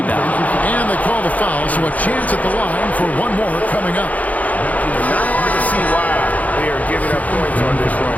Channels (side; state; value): right; late; 0.074 ms